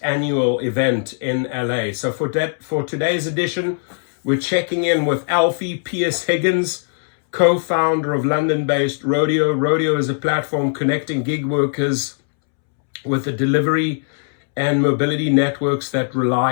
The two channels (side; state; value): right; silent; 66 dB below the other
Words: annual event in LA. So for today's edition, we're checking in with Alfie Pierce-Higgins, co-founder of London-based RODEO. RODEO is a platform connecting gig workers with the delivery and mobility networks that